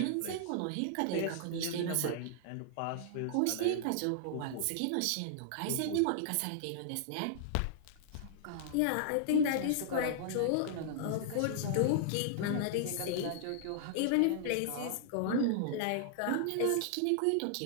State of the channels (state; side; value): different; both; correlation -0.01